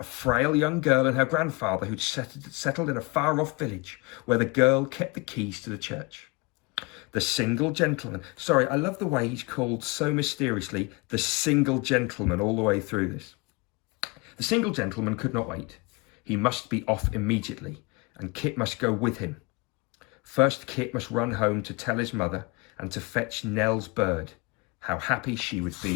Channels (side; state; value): right; quieter; 26.9 dB